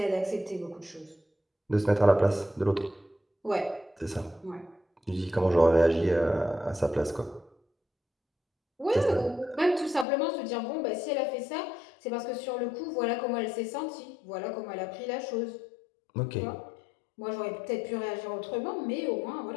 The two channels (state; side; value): drops out; right; at 10.1 s